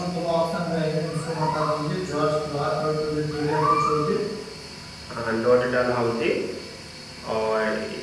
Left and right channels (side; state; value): both; identical; correlation 1.00